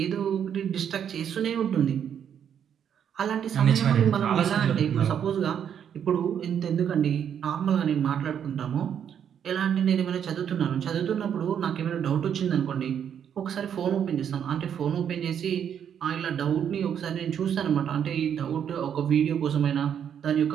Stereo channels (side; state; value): left; quieter; 8.6 dB